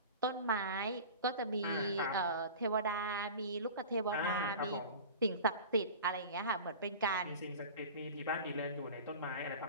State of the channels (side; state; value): both; inverted; correlation -0.36